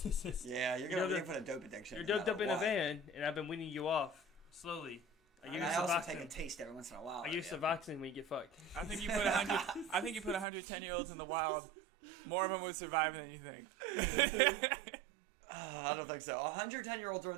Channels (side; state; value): left; drops out; at 10.5 s